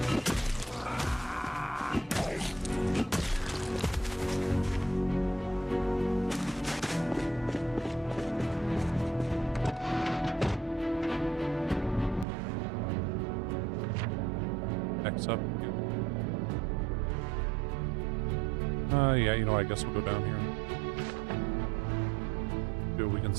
X up. Yeah, you know, I guess we'll go down here. See what we can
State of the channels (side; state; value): left; drops out; at 12.2 s